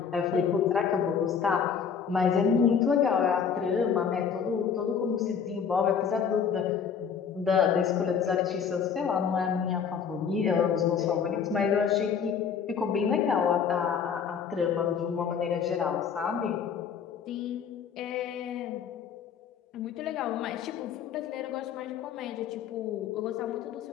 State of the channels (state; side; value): quieter; right; 7.0 dB